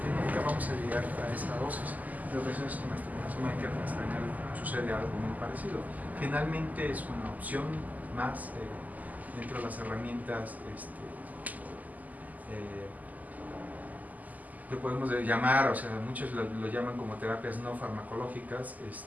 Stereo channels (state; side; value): late; left; 0.079 ms